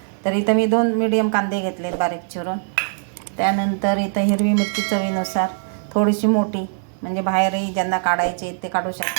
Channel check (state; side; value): silent; left; 65 dB below the other